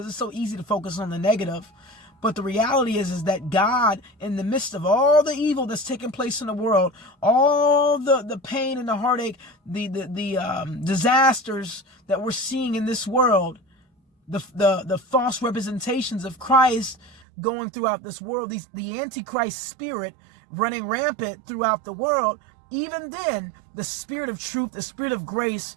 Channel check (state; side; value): drops out; left; at 17.2 s